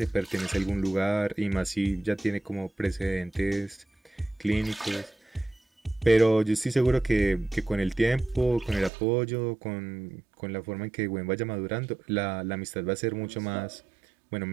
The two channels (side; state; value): left; drops out; at 8.9 s